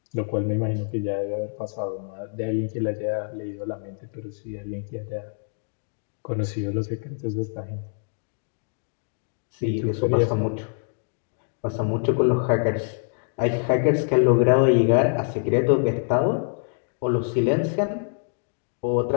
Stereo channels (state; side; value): silent; right; digital silence